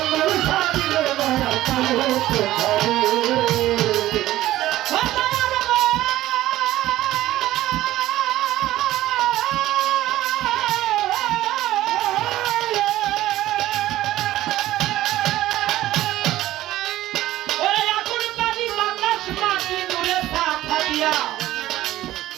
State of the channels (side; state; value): left; quieter; 15.0 dB